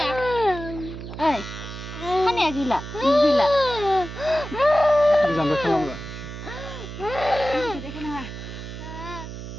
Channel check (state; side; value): noise; right; hum, 10 dB below the sound